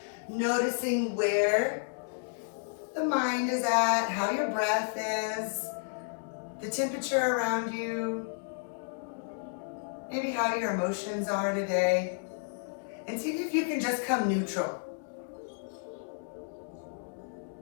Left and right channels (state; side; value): silent; right; digital silence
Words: noticing where the mind is at, how your breath is, the temperature around you, maybe how your emotions are today, and see if you can just come neutral.